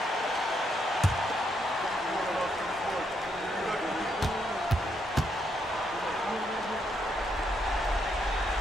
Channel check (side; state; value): both; normal; correlation 0.77